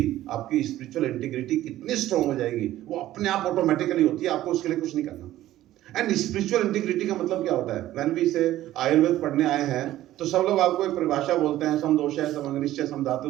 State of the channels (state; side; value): quieter; left; 14.2 dB